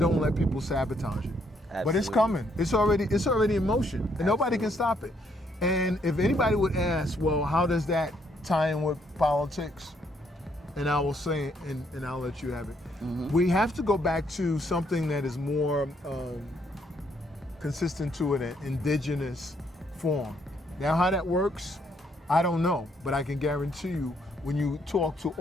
let people sabotage it. Absolutely. But it's coming. It's already in motion, and nobody can stop it. And if anybody would ask, well, how does that tie in with politics? And I will say, and I'll let you have it. We have to go back to something that is more consistent to an indigenous form. Now, how that works, I don't know, but I can guarantee you, when you talk to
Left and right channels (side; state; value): both; normal; correlation 0.71